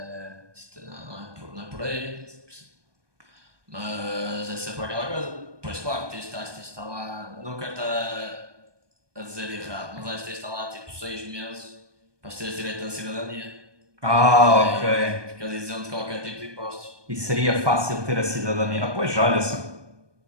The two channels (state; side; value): late; left; 1.2 ms